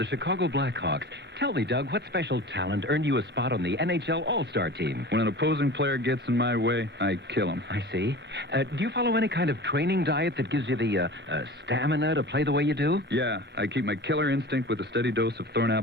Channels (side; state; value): both; normal; correlation 0.36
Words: Chicago Blackhawks. Tell me, Doug, what special talent earned you a spot on the NHL All-Star team? When an opposing player gets in my way, I kill him. I see. Do you follow any kind of training diet that gives you the stamina to play the way you do? Yeah, I keep my killer instinct with a steady dose of